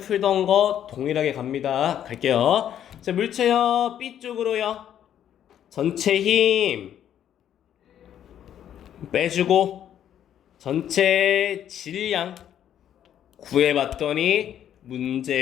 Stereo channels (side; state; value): right; quieter; 10.2 dB